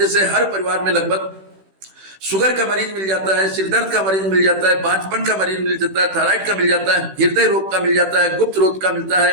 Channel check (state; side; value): late; left; 16 ms